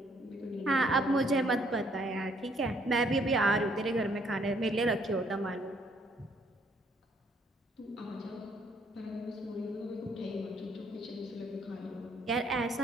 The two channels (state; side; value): normal; both; correlation 0.66